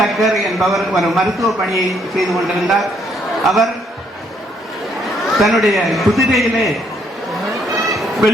என்பவர் ஒரு மருத்துவ பணியை செய்து கொண்டிருந்தார். அவர் தன்னுடைய குதிரையிலே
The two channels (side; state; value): both; normal; correlation 0.69